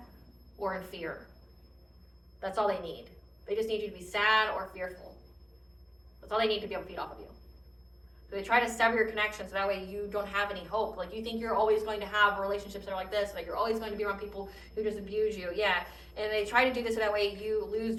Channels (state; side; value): identical; both; correlation 1.00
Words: or in fear. That's all they need. They just need you to be sad or fearful. That's all they need to be able to feed off of you. So they try to sever your connection so that way you don't have any hope. Like you think you're always going to have relationships that are like this, like you're always going to be around people who just abuse you. Yeah. And they try to do this so that way you lose